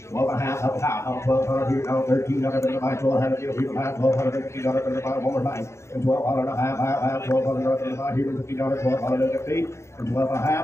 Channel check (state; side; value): late; right; 0.13 ms